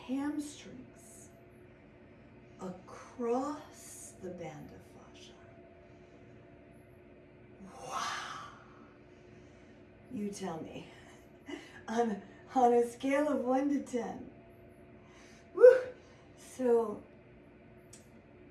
across the band of fascia. Wow. You tell me. On a scale of 1 to 10. Woo! So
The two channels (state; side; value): identical; both; correlation 1.00